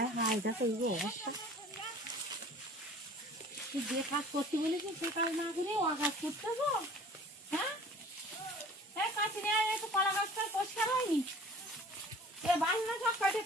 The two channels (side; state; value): both; normal; correlation 0.47